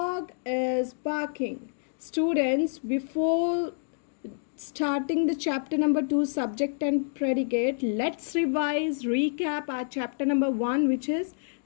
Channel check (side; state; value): right; silent; digital silence